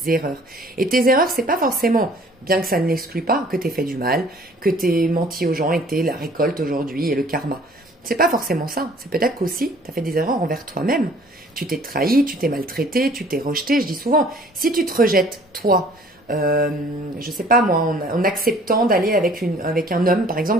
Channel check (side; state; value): both; normal; correlation 0.54